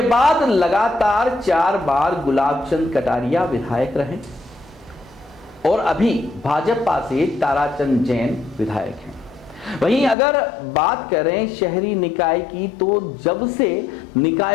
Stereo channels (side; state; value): right; drops out; at 10.2 s